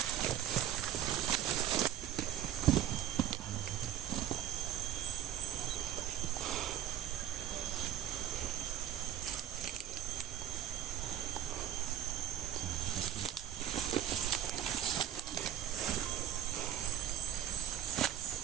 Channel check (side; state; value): left; quieter; 10.7 dB